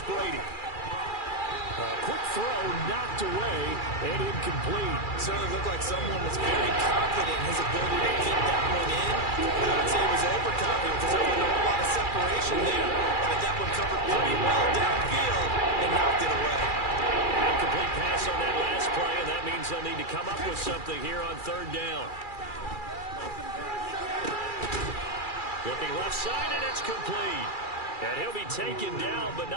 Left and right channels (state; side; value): late; right; 2.4 ms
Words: Brady. A quick throw knocked away and incomplete. Certainly looked like someone was very confident in his ability to kick that one in. I would say he was overconfident because there wasn't a whole lot of separation there. Had that one covered pretty well downfield and knocked it away. Incomplete pass on that last play, and that means they'll need to come up with something here on 3rd down. Looking left side, and it's complete. And he'll be taken down, but